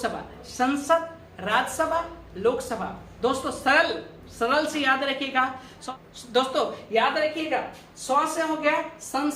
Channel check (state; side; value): identical; both; correlation 1.00